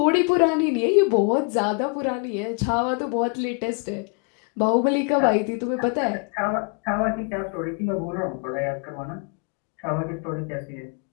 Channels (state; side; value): quieter; right; 35.1 dB